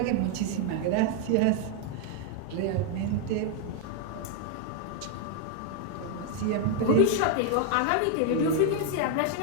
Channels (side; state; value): both; different; correlation 0.00